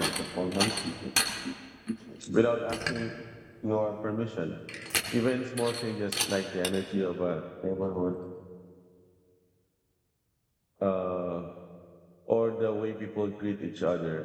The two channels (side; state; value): both; identical; correlation 1.00